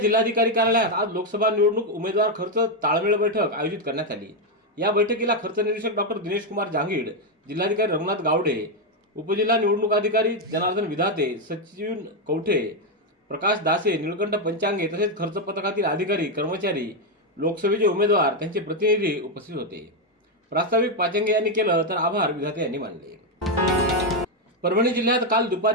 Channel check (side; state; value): both; normal; correlation 0.04